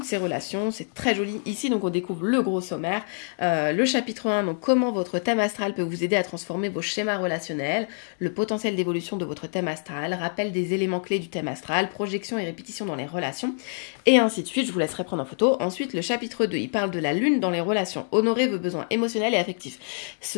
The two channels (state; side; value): silent; right; 61 dB below the other